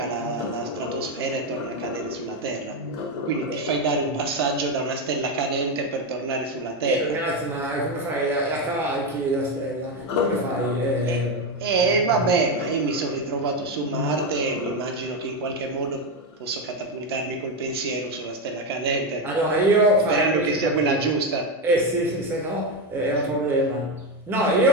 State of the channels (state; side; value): normal; both; correlation 0.10